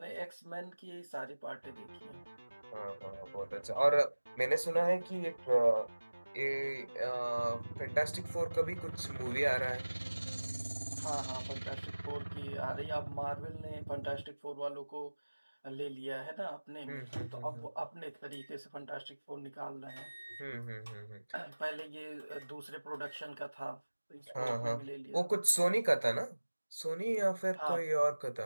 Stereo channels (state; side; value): inverted; both; correlation -1.00